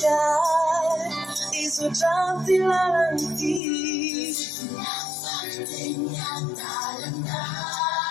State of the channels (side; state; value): right; drops out; at 3.6 s